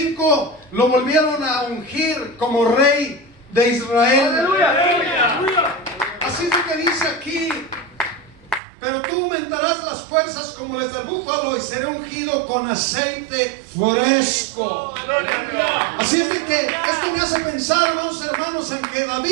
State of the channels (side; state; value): left; drops out; at 8.6 s